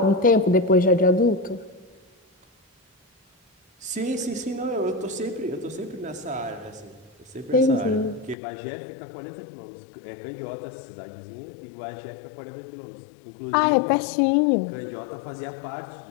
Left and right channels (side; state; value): right; drops out; at 8.3 s